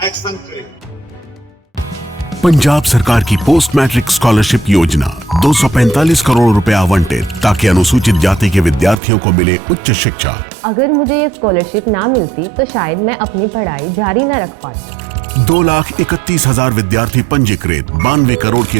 एक्शन करे। पंजाब सरकार की पोस्ट मैट्रिक स्कॉलरशिप योजना 245 करोड़ रुपए आवंटित ताकि अनुसूचित जाति के विद्यार्थियों को मिले उच्च शिक्षा। अगर मुझे ये स्कॉलरशिप ना मिलती तो शायद मैं अपनी पढ़ाई जारी न रख पाती। 2,31,000 विद्यार्थी पंजीकृत, 92 करोड़ की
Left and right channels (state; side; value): drops out; left; at 9.0 s